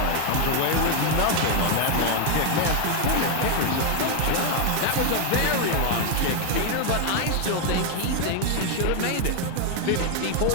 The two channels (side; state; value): both; different; correlation 0.00